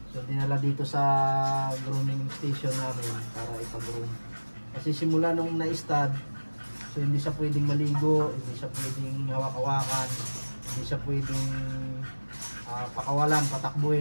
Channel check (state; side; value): inverted; both; correlation -1.00